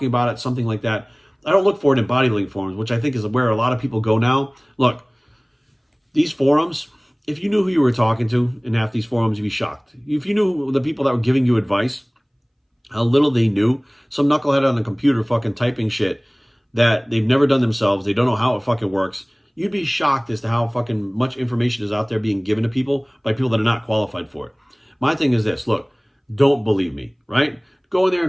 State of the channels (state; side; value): identical; both; correlation 1.00